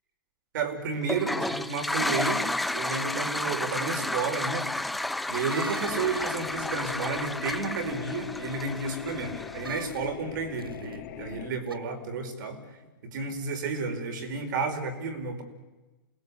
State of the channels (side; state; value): both; normal; correlation 0.23